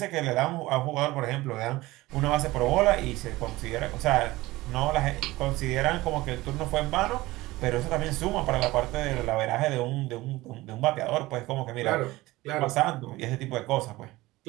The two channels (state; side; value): quieter; left; 19.0 dB